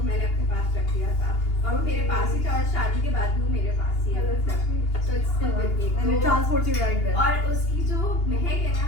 मैंने अपने पास रख दिया था और वो मेरे पास ही था और शादी के बाद भी वो मेरे पास ही है so it's still with me and it transports you right there और उसकी जो महक है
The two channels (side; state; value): right; late; 2.8 ms